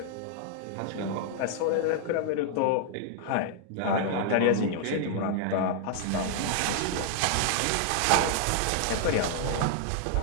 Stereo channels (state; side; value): different; both; correlation -0.01